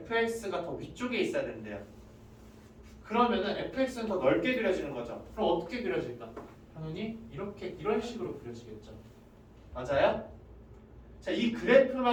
더 위쪽에 있어야 된대요. 그러면은 fx는 더 넓게 그려지는 거죠. 그럼 어떻게 그려질까? 당연히 이렇게 이런 식으로 그려지겠죠. 맞아요? 자, 이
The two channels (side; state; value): both; identical; correlation 1.00